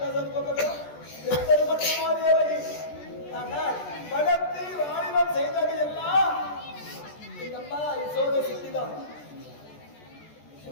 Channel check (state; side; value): late; right; 14 ms